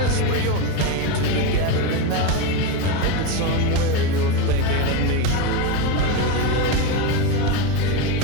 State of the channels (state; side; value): different; both; correlation 0.06